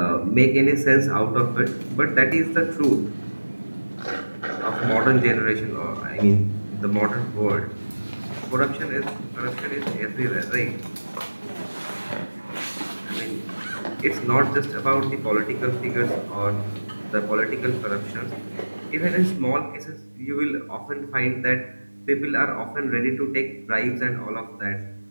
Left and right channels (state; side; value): inverted; both; correlation -1.00